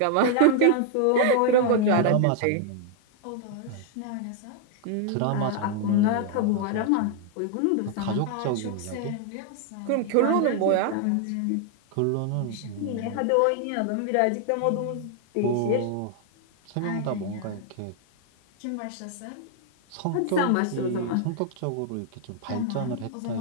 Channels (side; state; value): both; different; correlation 0.00